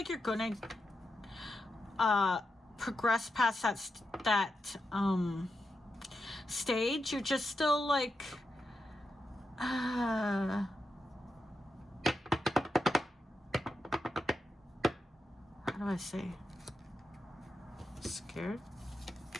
you're gonna progress past that stage. You're just still like how do I say, scared?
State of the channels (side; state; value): both; normal; correlation 0.87